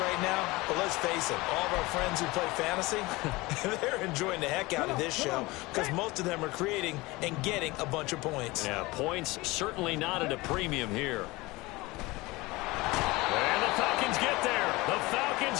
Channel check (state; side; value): quieter; right; 21.9 dB